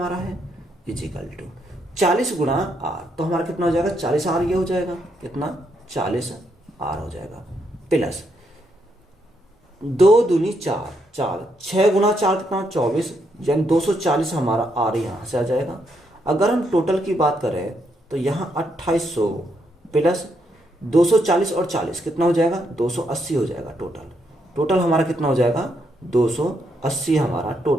है इजिकल टू 40 गुणा आर, तो हमारा कितना हो जाएगा 40 आर, ये हो जाएगा कितना 40 आर हो जाएगा, प्लस 2 दूनी 4, 6 गुणा 4 कितना 24, यानी 240 हमारा आर यहाँ से आ जाएगा। अगर हम टोटल की बात करें तो यहाँ 2800 प्लस 240 और 40 कितना हो जाएगा 280 हो जाएगा। टोटल हमारा कितना हो जाएगा 280 हमारा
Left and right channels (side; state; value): both; normal; correlation 0.77